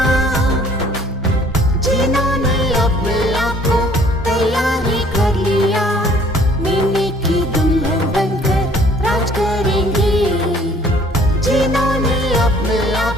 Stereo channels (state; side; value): normal; both; correlation 0.56